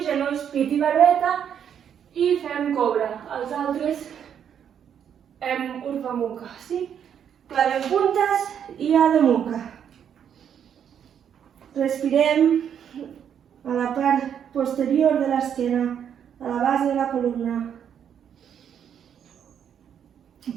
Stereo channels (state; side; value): quieter; left; 8.6 dB